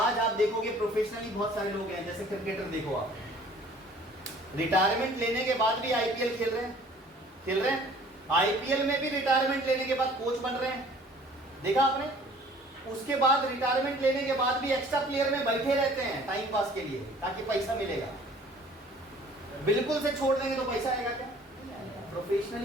आप देखोगे प्रोफेशनली बहुत सारे लोग हैं, जैसे क्रिकेटर देखो आप, रिटायरमेंट लेने के बाद भी आईपीएल खेल रहे हैं। आईपीएल में भी रिटायरमेंट लेने के बाद कोच बन रहे हैं, देखा आपने? उसके बाद रिटायरमेंट लेने के बाद भी एक्स्ट्रा प्लेयर में बैठे रहते हैं टाइम पास के लिए, ताकि पैसा मिलेगा। बिल्कुल से छोड़ देंगे तो पैसा आएगा क्या?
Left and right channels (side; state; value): both; normal; correlation 0.52